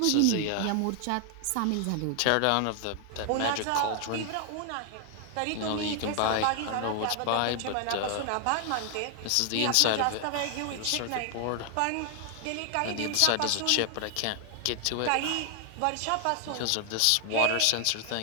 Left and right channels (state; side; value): different; both; correlation 0.00